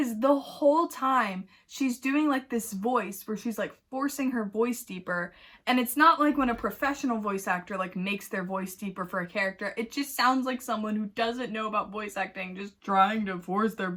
the whole time she's doing like this voice where she's like forcing her voice deeper, and it's not like when a professional voice actor like makes their voice deeper for a character. It just sounds like someone who doesn't know about voice acting just trying to force their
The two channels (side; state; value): both; identical; correlation 1.00